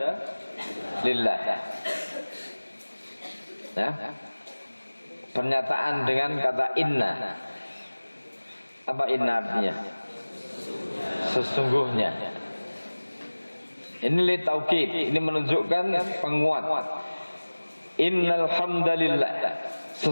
lillah. Ya. Pernyataan dengan kata inna. Apa inna artinya? Sesungguhnya. Ini li taukid, ini menunjukkan penguat. Innal hamdalillah.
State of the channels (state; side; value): inverted; both; correlation -1.00